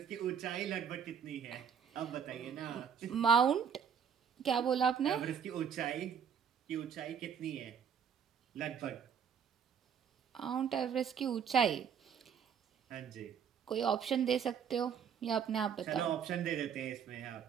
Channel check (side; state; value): left; quieter; 7.5 dB